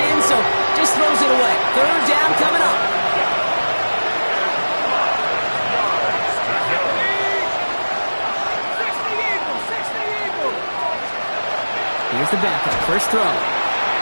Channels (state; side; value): inverted; both; correlation -1.00